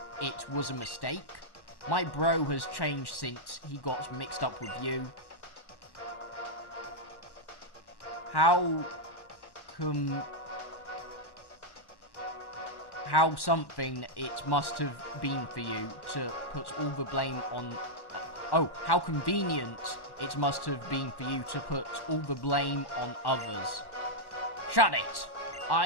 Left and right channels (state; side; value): late; right; 1.1 ms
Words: it was a mistake? My bro has changed since he got mixed up with you. How something it must have been for you to put all the blame on... oh, how convenient it must have been for you to put all the blame on others. Shut it!